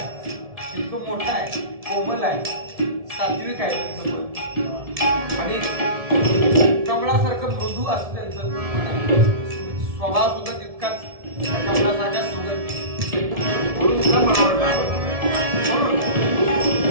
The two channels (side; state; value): left; late; 1.7 ms